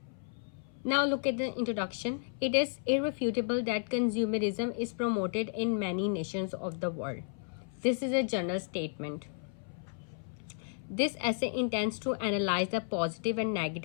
Now look at the introduction. It is irrefutable that consumerism is promoted in many nations of the world. This is a general statement. This essay intends to analyze the positive and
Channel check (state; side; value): silent; right; 56 dB below the other